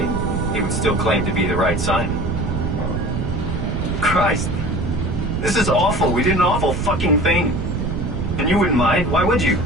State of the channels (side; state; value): right; noise; rumble, 2 dB below the sound